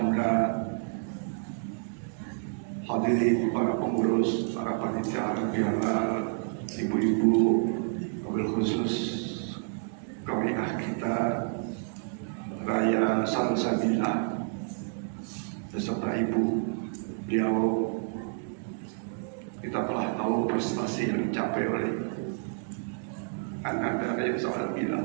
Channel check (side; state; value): left; silent; 58 dB below the other